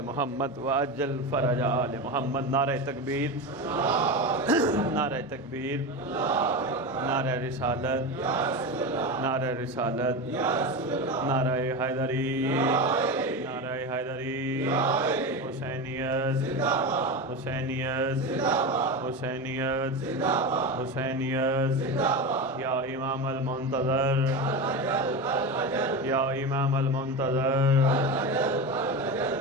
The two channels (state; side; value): normal; both; correlation 0.21